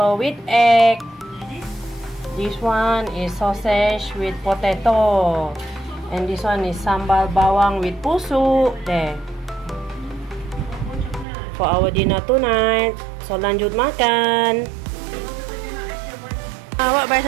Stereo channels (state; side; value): drops out; left; at 11.2 s